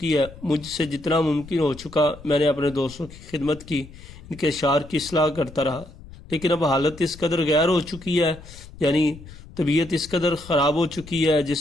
ہے، مجھ سے جتنا ممکن ہو چکا میں نے اپنے دوستوں کی خدمت کی، ان کے اشعار کی اصلاح کرتا رہا، لیکن اب حالت اس قدر غیر ہو چکی ہے، یعنی طبیعت اس قدر خراب ہو چکی ہے،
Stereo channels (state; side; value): noise; left; rumble, 18 dB below the sound